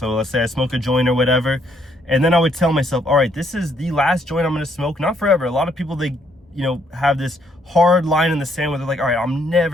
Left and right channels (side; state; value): both; normal; correlation 0.70